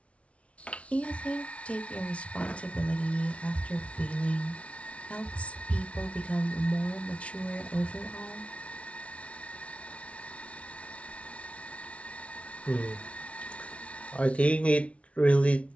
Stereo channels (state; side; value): late; right; 0.063 ms